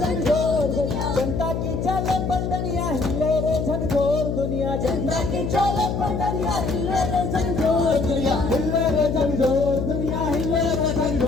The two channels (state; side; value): noise; left; hum, 2 dB below the sound